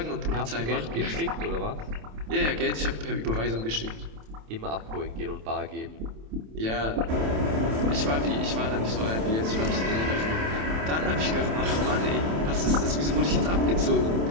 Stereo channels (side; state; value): left; late; 27 ms